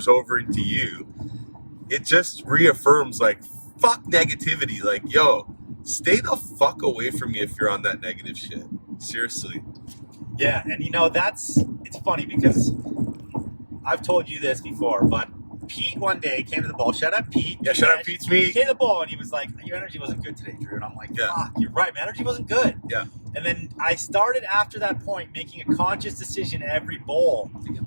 over into you. It just reaffirms like, fuck negativity. Like, yo, stay the fuck away from me if you're on that negative shit. Seriously. Yeah, and it's funny because I've told you this before, but Pete one day came to the bowl. Shout out Pete. Yeah, shout out Pete's me. He came to the bowl and he was like, your energy wasn't good today, Drew. And I'm like, fuck, you're right. My energy wasn't good. Yeah. And then I started after that point making a conscious decision every bowl. To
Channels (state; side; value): inverted; both; correlation -1.00